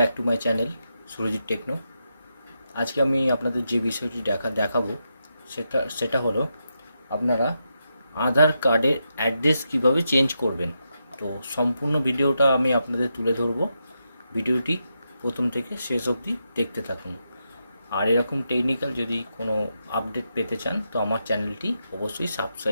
to my channel Surajit techno. আজকে আমি আপনাদের যে বিষয়টি দেখাবো সেটা হলো আপনারা আধার কার্ডের অ্যাড্রেস কিভাবে চেঞ্জ করবেন। তো সম্পূর্ণ ভিডিওটা আমি আপনাদের তুলে ধরবো। ভিডিওটি প্রথম থেকে শেষ অবধি দেখতে থাকুন। আর এরকম টেকনিক্যাল যদি কোনো আপডেট পেতে চান তো আমার চ্যানেলটি অবশ্যই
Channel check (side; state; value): both; inverted; correlation -0.85